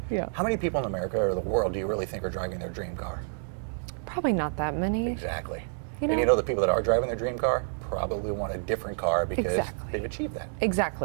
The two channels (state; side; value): silent; left; digital silence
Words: yeah. How many people in America or the world do you really think are driving their dream car? Probably not that many. Exactly. You know? And you know the people that are driving their dream car probably want a different car because they've achieved that.